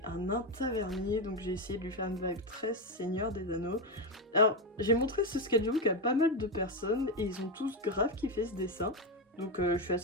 un nain tavernier, donc j'ai essayé de lui faire une vibe très Seigneur des Anneaux. Alors j'ai montré ce sketchbook à pas mal de personnes et ils ont tous grave kiffé ce dessin. Donc je suis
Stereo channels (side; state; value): both; normal; correlation 0.09